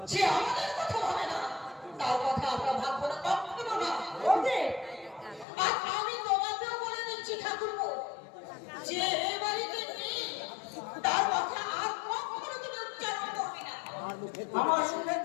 যে আমাদের কথা ভাবে না তার কথা আমরা ভাববো না, কখনো না। বৌদি, আর আমি তোমাকেও বলে দিচ্ছি ঠাকুরপো, যে এই বাড়িতে নেই তার কথা আর কখনো তুমি উচ্চারণ করবে না। আমার মুখের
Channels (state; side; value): drops out; right; at 5.5 s